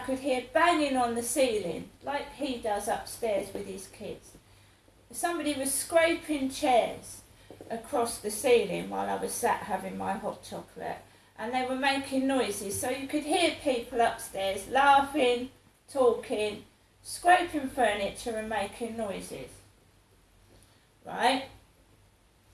hear banging on the ceiling like he does upstairs with his kids. Somebody was scraping chairs across the ceiling while I was sat having my hot chocolate, and they were making noises, so you could hear people upstairs laughing, talking, scraping furniture and making noises. Right?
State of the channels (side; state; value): both; identical; correlation 1.00